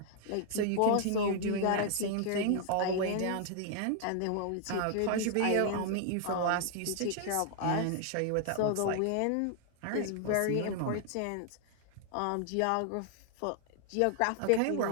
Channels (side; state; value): both; different; correlation 0.00